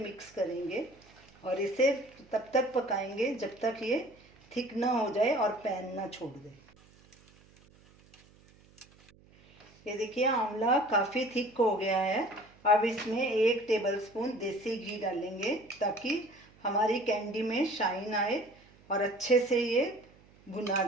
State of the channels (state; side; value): noise; right; hum, 27 dB below the sound